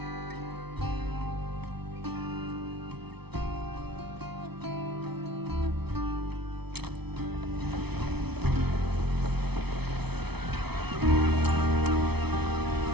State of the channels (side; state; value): left; late; 0.98 ms